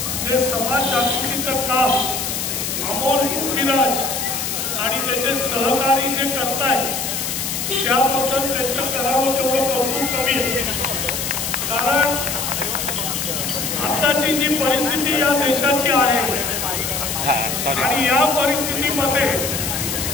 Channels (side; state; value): left; noise; hiss, 3 dB below the sound